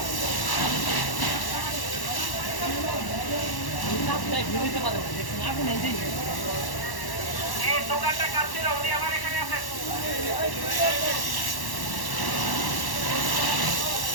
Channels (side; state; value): right; late; 1.1 ms